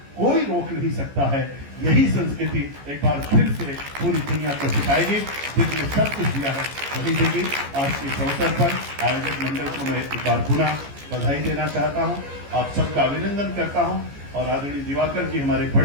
कोई रोक नहीं सकता है। यही संस्कृति एक बार फिर से पूरी दुनिया को सिखाएगी, जिसने सब कुछ दिया है वही देगी। आज के अवसर पर आयोजक मंडल को मैं एक बार पुनः बधाई देना चाहता हूँ, आप सबका अभिनंदन करता हूँ और आदरणीय दिवाकर जी हमारे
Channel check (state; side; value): late; left; 14 ms